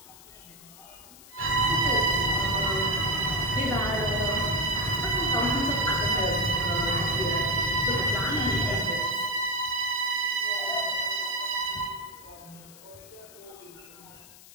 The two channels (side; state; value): left; noise; hiss, 21 dB below the sound